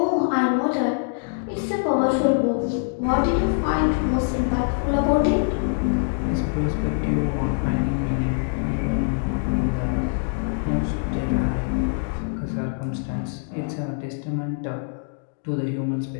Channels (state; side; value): silent; right; digital silence